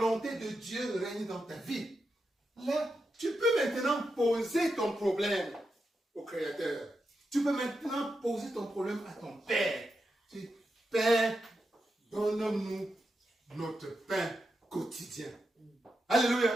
de Dieu règne dans ta vie, là, tu peux maintenant poser ton problème au Créateur. Tu peux maintenant poser ton problème à ton Père. Tu dis, Père, donne-nous notre pain quotidien.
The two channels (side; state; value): both; normal; correlation 0.87